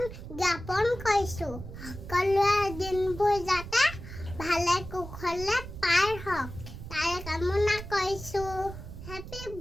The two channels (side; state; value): right; noise; rumble, 11 dB below the sound